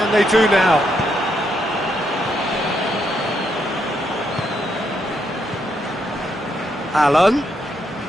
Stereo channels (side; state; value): both; normal; correlation 0.77